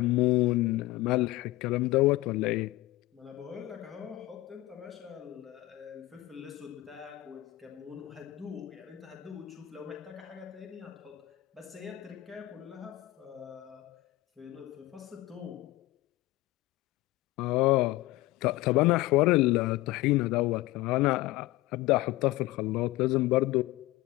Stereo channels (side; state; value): right; quieter; 18.4 dB